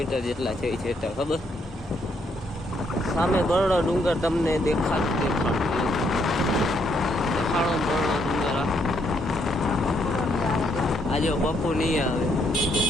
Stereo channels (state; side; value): normal; both; correlation 0.73